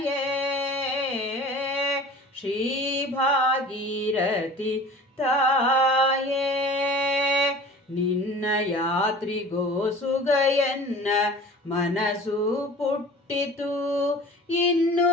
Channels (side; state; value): both; normal; correlation 0.42